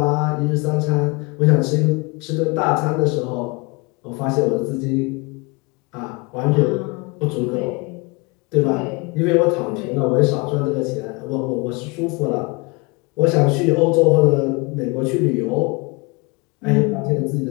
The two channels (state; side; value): quieter; right; 27.9 dB